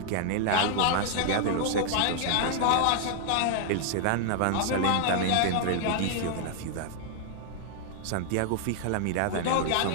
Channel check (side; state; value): both; different; correlation 0.00